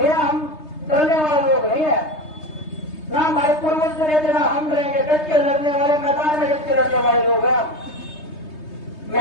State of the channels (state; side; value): late; right; 3.2 ms